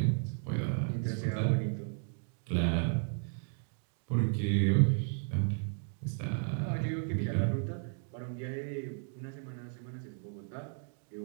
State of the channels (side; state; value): left; silent; 55 dB below the other